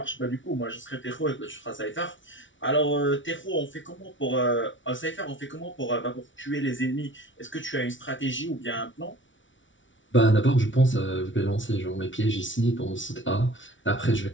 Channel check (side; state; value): right; late; 0.56 ms